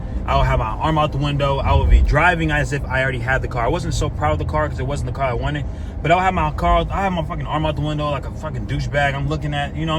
I would have my arm out the window, I would be driving as if I already had the car. I wasn't so proud of the car because it wasn't the car I wanted, but I would have my car, I have my fucking arm out the window like a fucking douchebag. I'm looking at,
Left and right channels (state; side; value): identical; both; correlation 1.00